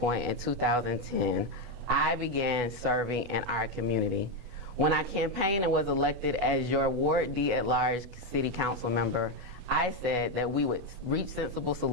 in 2010, I began serving in our community. When I campaigned and was elected as your Ward D at-large city council member, I said that we would reach sensible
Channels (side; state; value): left; late; 8.2 ms